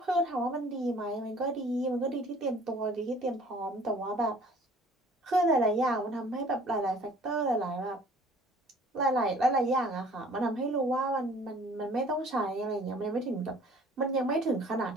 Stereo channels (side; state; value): both; normal; correlation 0.52